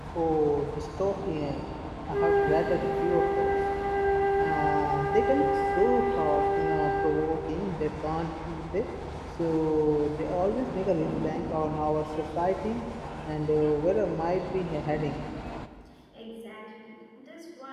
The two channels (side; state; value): both; identical; correlation 1.00